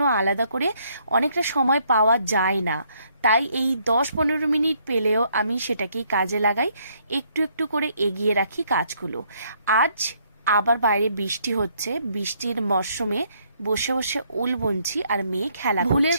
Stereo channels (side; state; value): both; inverted; correlation -0.69